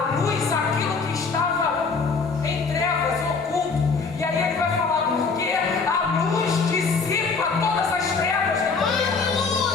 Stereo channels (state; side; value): quieter; right; 4.7 dB